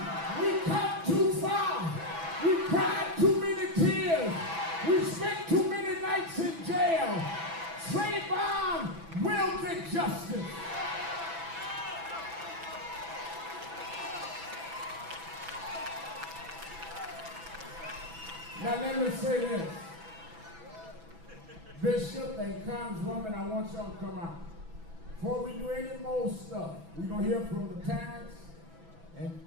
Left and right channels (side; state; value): left; late; 6.0 ms